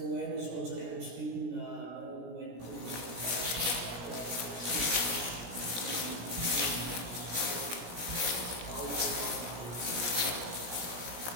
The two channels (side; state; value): left; late; 17 ms